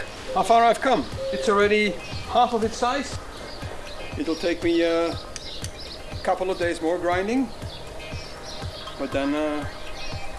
how far I've come. It's already half of its size. It'll take me a couple of days more grinding, but then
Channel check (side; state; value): both; identical; correlation 1.00